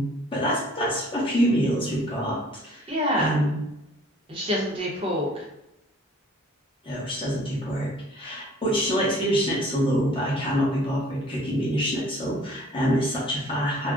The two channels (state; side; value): normal; both; correlation 0.53